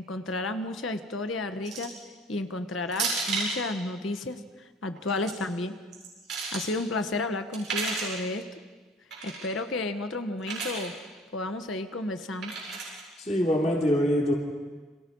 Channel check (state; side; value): normal; both; correlation 0.52